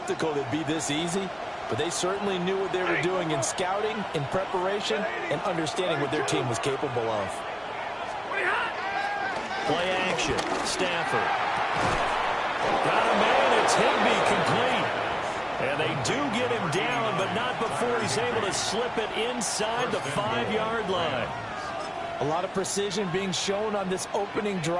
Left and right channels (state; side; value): identical; both; correlation 1.00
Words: it'd be this easy, but they certainly knew what they were doing in scouting, in preparation, and understanding what their team was capable of. Play action. Stafford. Got a man. It's Higbee complete. And they do get him down, but not before he's able to slip it inside the 5-yard line. A lot of precision being shown on this opening